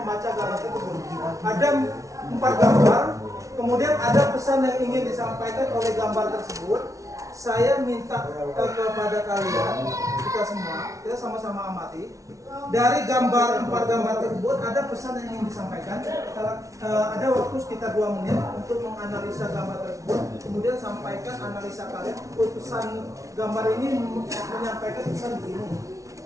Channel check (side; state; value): left; late; 0.16 ms